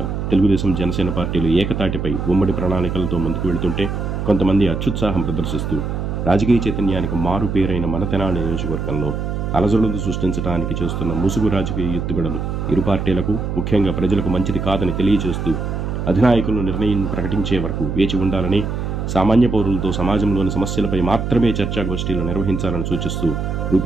తెలుగుదేశం జనసేన పార్టీలు ఏకతాటిపై ఉమ్మడి ప్రణాళికలతో ముందుకు వెళుతుంటే కొంతమంది అత్యుత్సాహం ప్రదర్శిస్తూ రాజకీయ చైతన్యానికి మారు పేరైన మన తెనాలి నియోజకవర్గంలో అలజడులు సృష్టించడానికి చేస్తున్న ముసుగు రాజకీయ ఎత్తుగడలు ఇరు పార్టీలకు ముఖ్యంగా ప్రజలకు మంచిది కాదని తెలియజేస్తూ అధినాయకులు నిర్ణయం ప్రకటించే వరకు వేచి ఉండాలని, సామాన్య పౌరులతో సమాజంలోని సమస్యలపై మాత్రమే చర్చాగోష్ఠీలు నిర్వహించాలని సూచిస్తూ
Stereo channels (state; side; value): noise; right; hum, 3 dB below the sound